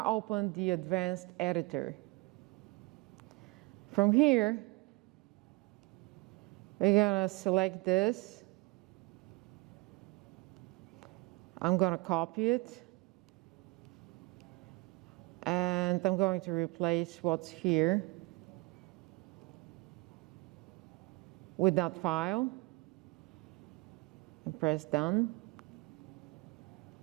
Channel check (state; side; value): quieter; left; 25.0 dB